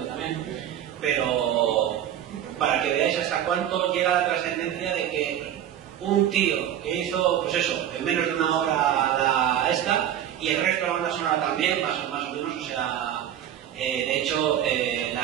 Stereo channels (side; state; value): left; quieter; 10.6 dB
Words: también, pero para que veáis hasta cuánto llega la trascendencia de que un tío que hizo, pues eso, en menos de una hora y el resto de la banda sonora también, más o menos, o sea, de hecho,